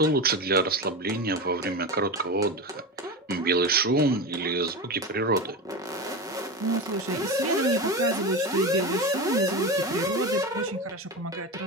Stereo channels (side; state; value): both; normal; correlation 0.22